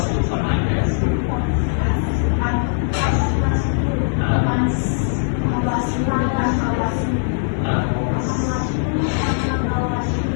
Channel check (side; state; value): right; silent; digital silence